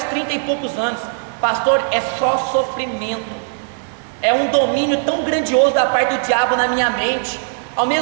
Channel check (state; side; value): silent; left; 61 dB below the other